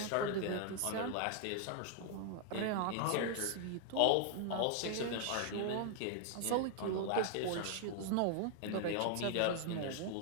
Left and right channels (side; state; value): both; different; correlation 0.00